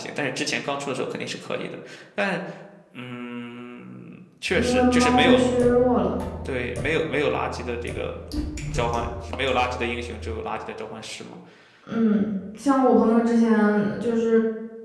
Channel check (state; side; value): identical; both; correlation 1.00